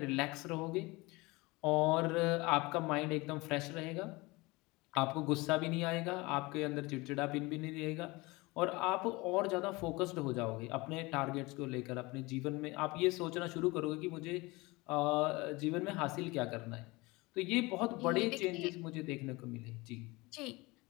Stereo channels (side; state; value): right; quieter; 23.3 dB